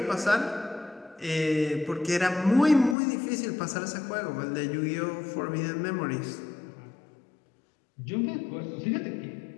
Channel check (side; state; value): right; drops out; at 3.0 s